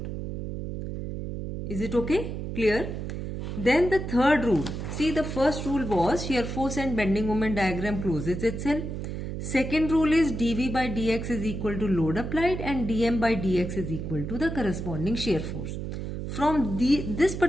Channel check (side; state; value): right; noise; hum, 5 dB below the sound